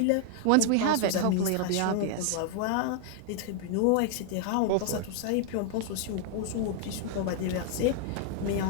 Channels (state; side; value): different; both; correlation 0.00